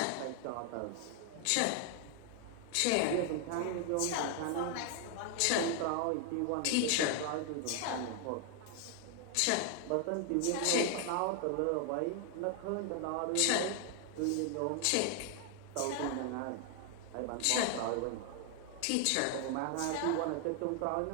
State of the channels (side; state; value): both; different; correlation 0.00